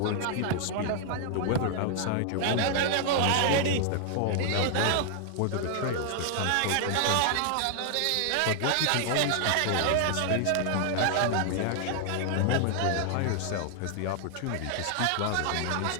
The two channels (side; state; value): both; different; correlation 0.00